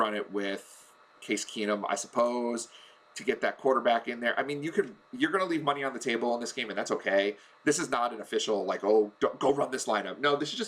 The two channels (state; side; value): identical; both; correlation 1.00